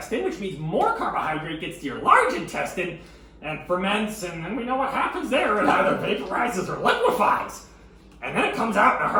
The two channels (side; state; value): both; identical; correlation 1.00